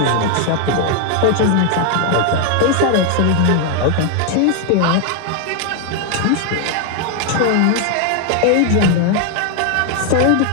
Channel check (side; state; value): both; different; correlation 0.00